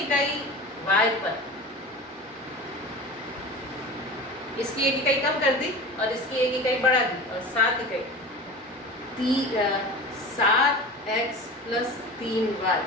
इकाई y पर इसकी एक इकाई कम कर दी और इसकी एक इकाई बढ़ा दी और 7 इकाई 7x + 3y,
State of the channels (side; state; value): both; normal; correlation 0.33